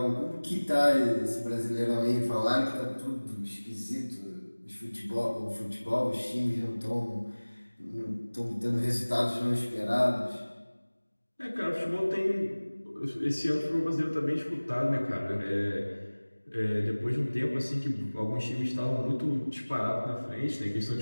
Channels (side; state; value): both; inverted; correlation -1.00